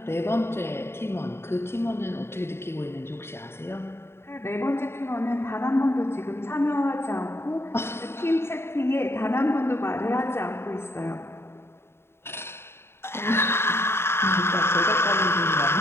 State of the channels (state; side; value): late; right; 0.12 ms